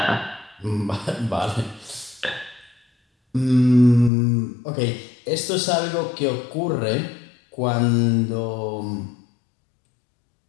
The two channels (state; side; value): drops out; right; at 4.1 s